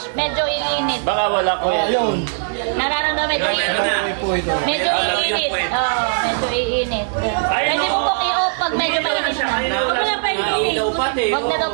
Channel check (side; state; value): left; silent; digital silence